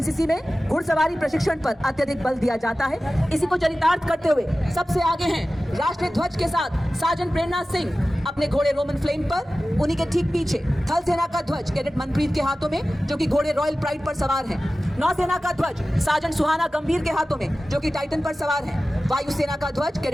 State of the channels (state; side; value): normal; both; correlation 0.96